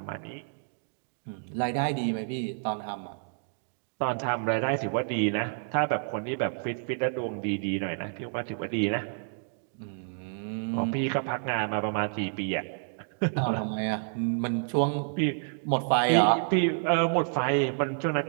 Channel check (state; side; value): silent; left; digital silence